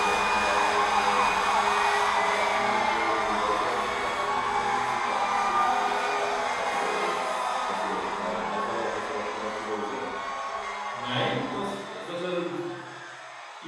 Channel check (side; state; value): both; identical; correlation 1.00